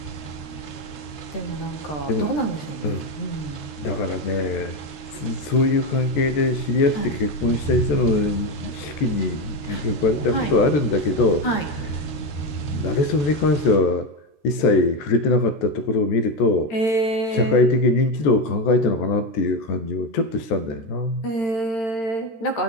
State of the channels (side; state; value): right; late; 13 ms